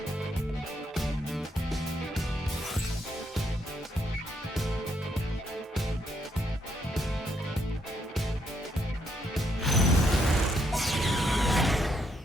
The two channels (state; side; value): normal; both; correlation 0.75